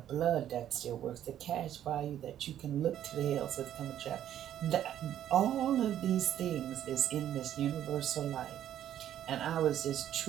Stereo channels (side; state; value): left; quieter; 11.1 dB